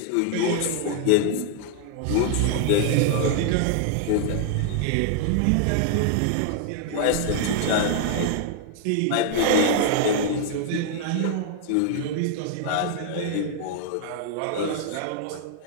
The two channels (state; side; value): different; both; correlation 0.00